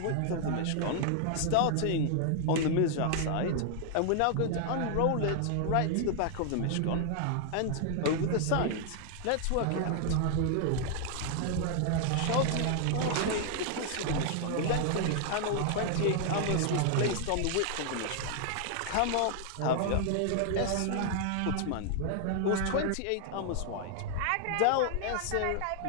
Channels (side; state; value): both; different; correlation 0.00